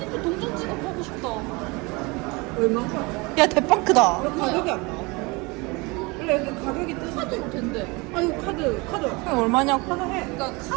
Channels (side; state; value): left; quieter; 26.1 dB